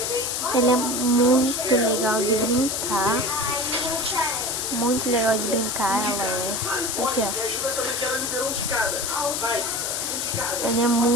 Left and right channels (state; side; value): noise; left; hiss, 1 dB below the sound